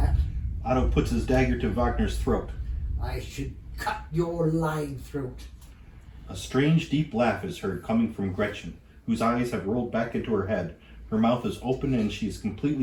Otto puts his dagger to Wagner's throat. I should cut your lying throat. A strange, deep laugh is heard coming from Gretchen, whose eyes have rolled back into her head. Her mouth is open and she is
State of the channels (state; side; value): identical; both; correlation 1.00